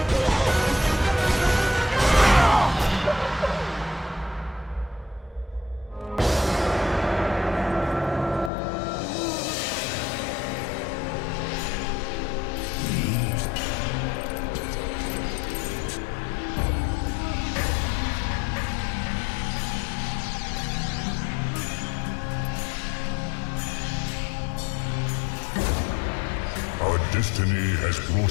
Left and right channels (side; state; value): right; drops out; at 8.5 s